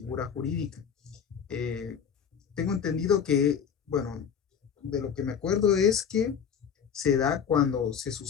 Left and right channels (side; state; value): right; quieter; 7.4 dB